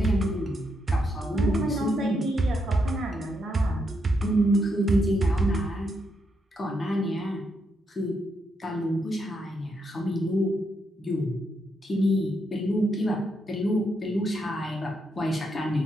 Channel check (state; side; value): normal; both; correlation 0.80